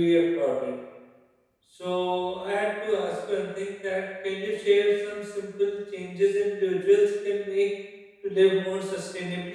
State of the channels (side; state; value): both; identical; correlation 1.00